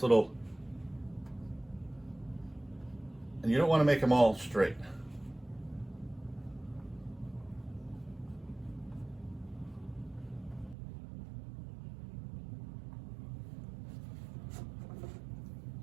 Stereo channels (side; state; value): left; drops out; at 10.8 s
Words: little, and you don't want to make them all straight.